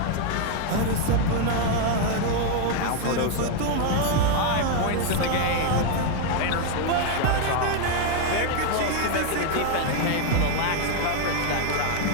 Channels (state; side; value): different; both; correlation 0.01